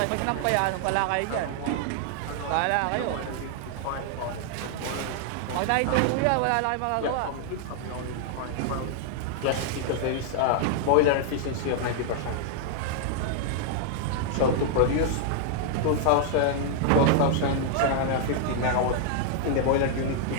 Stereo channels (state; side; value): different; both; correlation 0.00